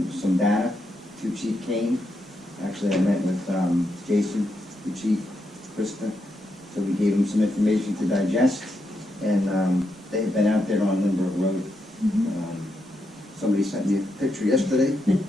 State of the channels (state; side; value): normal; both; correlation 0.82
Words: some data to Chief Kane. Actually, I met with Jason, the chief, Krista, so we gave him some information to digest, and they have been out there on Lindbergh Road. Somebody sent me a picture yesterday.